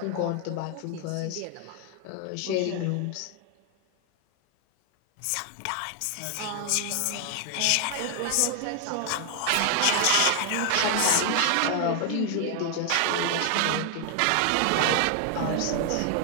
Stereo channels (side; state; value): both; different; correlation 0.00